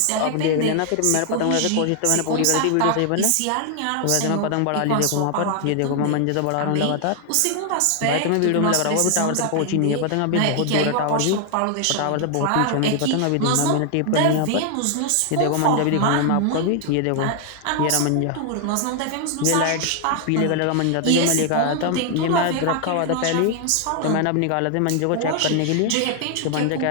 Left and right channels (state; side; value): different; both; correlation 0.00